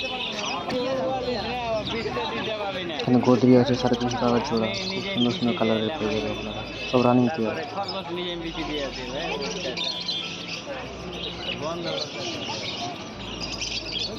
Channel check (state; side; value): identical; both; correlation 1.00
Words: এখানে গোদরি আছে 350 টাকা জোড়া, খুব সুন্দর সুন্দর কালারের পেয়ে যাবে আপনারা, সব রানিং পেয়ার।